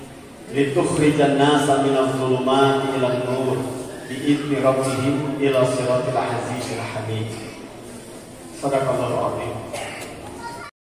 litukhrijan nasa minadh dhulumati ilan nur bi'izni rabbihim ila siratil azizil hamid. Shadaqallahul azim.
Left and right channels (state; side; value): identical; both; correlation 1.00